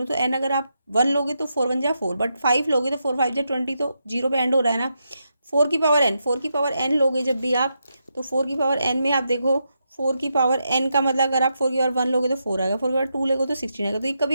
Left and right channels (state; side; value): inverted; both; correlation -0.84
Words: तो n अगर आप 1 लोगे तो 4 1 जा 4, बट 5 लोगे तो 4 5 जा 20, तो 0 पे एंड हो रहा है ना। 4 की पावर n, 4 की पावर n लोगे जब भी आप, तो 4 की पावर n में आप देखो 4 की पावर n का मतलब अगर आप 4 की पावर 1 लोगे तो 4 आएगा, 4 की पावर 2 लोगे तो 16 आएगा, तो ये